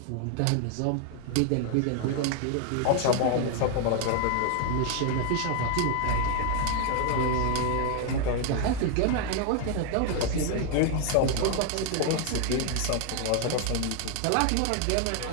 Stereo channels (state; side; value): different; both; correlation 0.00